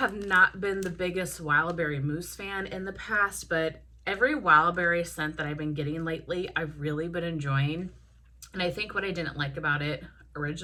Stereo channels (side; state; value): both; identical; correlation 1.00